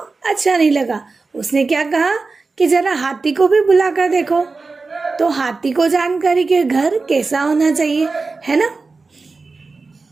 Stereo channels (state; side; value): quieter; left; 4.0 dB